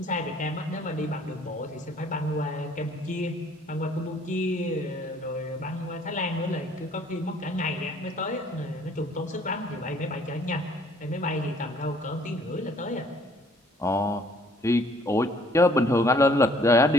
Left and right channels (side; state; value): both; normal; correlation 0.59